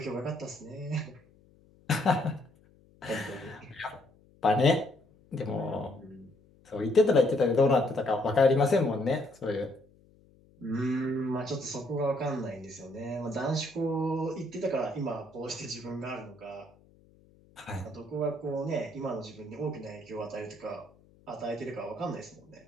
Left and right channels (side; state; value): left; noise; hum, 29 dB below the sound